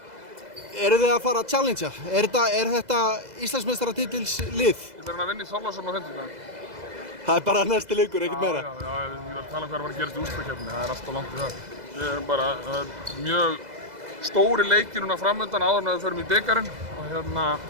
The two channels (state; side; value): late; left; 2.0 ms